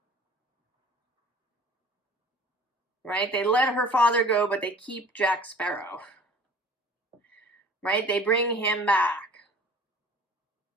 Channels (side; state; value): both; normal; correlation 0.47